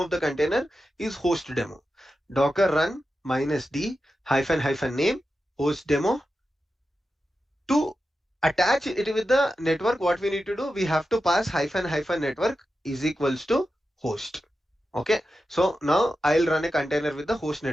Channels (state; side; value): normal; both; correlation 0.91